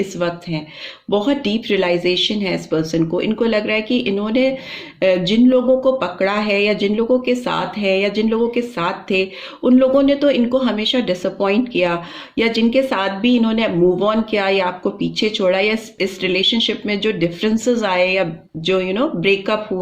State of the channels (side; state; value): both; identical; correlation 1.00